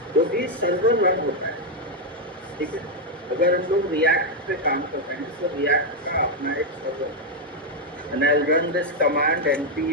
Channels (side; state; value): both; normal; correlation 0.01